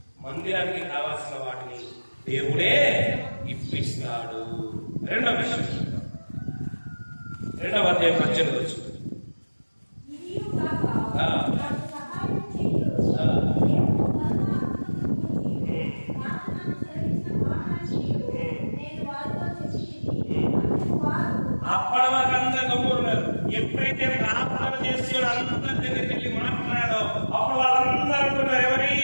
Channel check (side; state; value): both; inverted; correlation -1.00